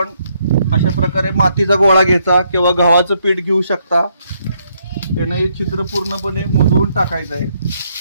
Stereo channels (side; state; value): both; inverted; correlation -0.74